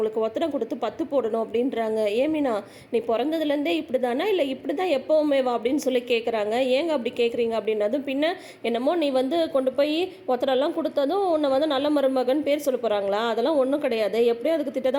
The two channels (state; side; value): identical; both; correlation 1.00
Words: ஒத்தனை கொடுத்து பத்து போடணும் அப்படின்றாங்க. ஏமினா, நீ பிறந்ததுலேருந்தே இப்படி தானே, இல்லை இப்படி தான் எப்போவுமே வா அப்படின்னு சொல்லி கேட்குறாங்க. ஏங்க அப்படி கேட்குறீங்க அப்படின்னதும், பின்ன என்னமோ நீ கொண்டு போய் ஒத்தனைலாம் கொடுத்ததும் உன்னை நல்ல மருமகன் பேர் சொல்ல போகிறாங்களா, அதெல்லாம் ஒன்றும் கிடையாது, எப்படியும் அதுக்கு திட்ட